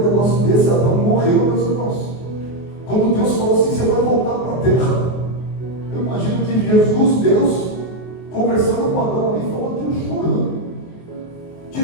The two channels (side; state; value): right; late; 23 ms